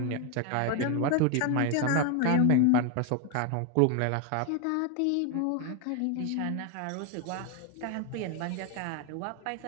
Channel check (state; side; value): different; both; correlation 0.01